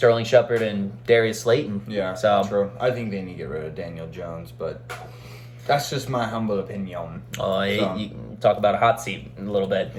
Shepard and Darius Slayton. Yeah, so true. I think they need to get rid of Daniel Jones, but that's just my humble opinion. You talk about a hot seat in a little bit.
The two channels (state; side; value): identical; both; correlation 1.00